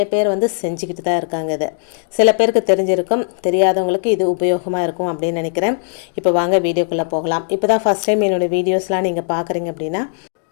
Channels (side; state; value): right; silent; 58 dB below the other